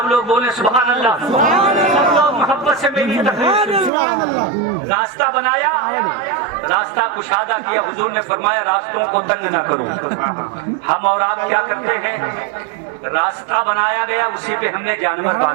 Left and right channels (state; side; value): drops out; left; at 3.9 s